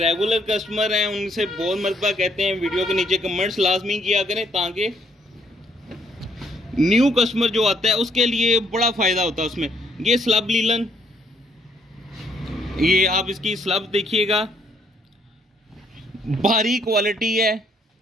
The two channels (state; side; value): normal; both; correlation 0.69